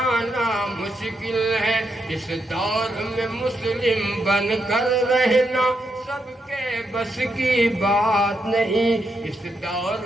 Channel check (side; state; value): both; normal; correlation 0.81